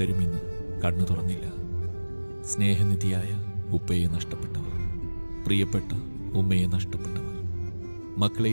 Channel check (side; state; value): both; inverted; correlation -1.00